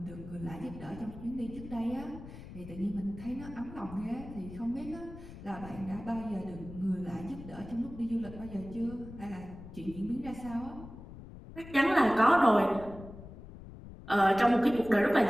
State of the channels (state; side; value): noise; left; rumble, 14 dB below the sound